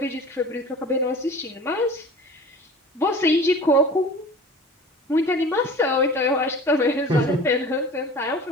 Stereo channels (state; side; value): normal; both; correlation 0.41